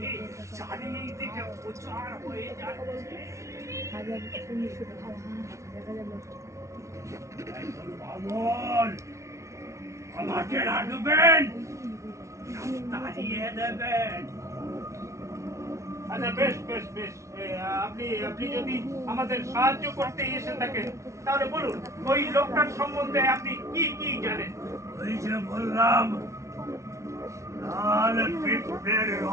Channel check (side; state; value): left; late; 0.14 ms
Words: চারিদিকে প্রচার হয়ে যাচ্ছে। বামন, আমাকে রাখবেন, তাড়িয়ে দেবেন। আচ্ছা, বেশ বেশ বেশ, আপনি যদি আমাদের সাহায্য করতে এসে থাকেন তাহলে বলুন ওই লোকটার সম্বন্ধে আপনি কি কি জানেন? ওই যে বললাম, লাল পিঁপড়ের